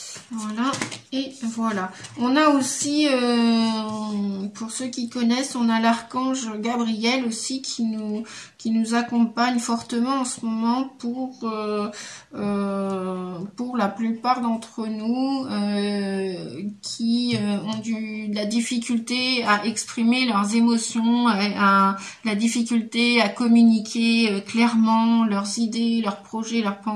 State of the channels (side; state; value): both; identical; correlation 1.00